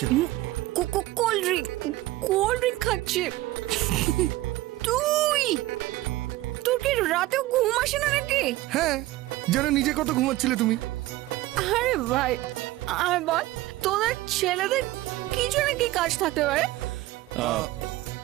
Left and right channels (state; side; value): quieter; left; 17.4 dB